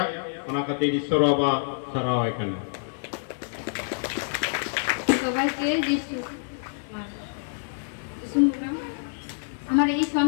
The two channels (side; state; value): right; silent; 60 dB below the other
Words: ओना खातिर ईश्वर बाबा सरावाय कना সবাইকে যিশু আমার এই